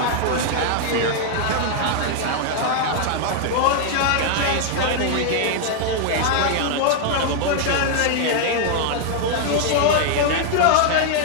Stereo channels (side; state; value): both; different; correlation 0.00